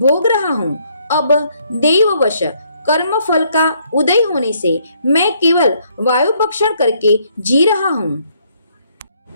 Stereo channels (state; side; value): inverted; both; correlation -0.69